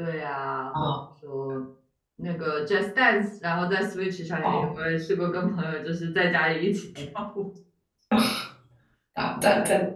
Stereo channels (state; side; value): identical; both; correlation 1.00